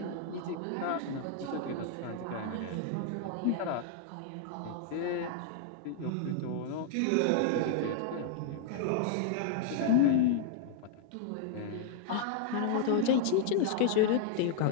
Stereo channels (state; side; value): different; both; correlation -0.01